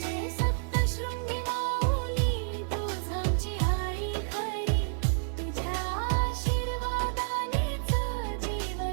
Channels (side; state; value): left; silent; 58 dB below the other